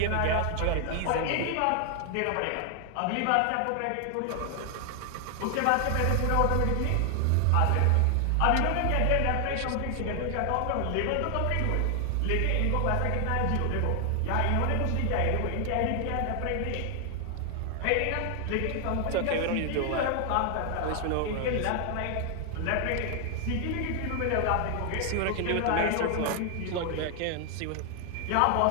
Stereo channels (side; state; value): both; different; correlation 0.00